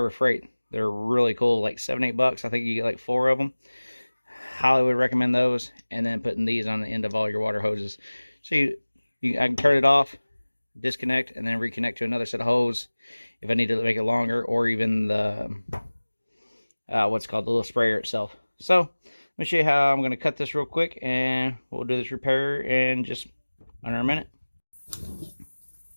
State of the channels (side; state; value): both; inverted; correlation -1.00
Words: Freight. They're really cool, like $7-8. I think you get like 4 of them. Highly would recommend those. And then putting these on the end of all your water hoses. So I can turn it off, disconnect, and then reconnect to another set of hose if I need to make it longer, or even the what's called the little sprayer itself. So let me show you how I'm going to cut this real quick, and we'll do this repair in just under a minute.